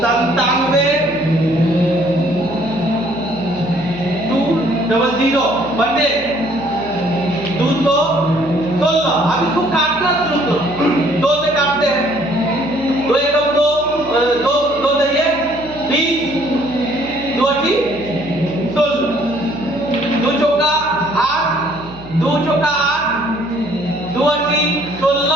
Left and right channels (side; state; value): right; noise; hum, 18 dB below the sound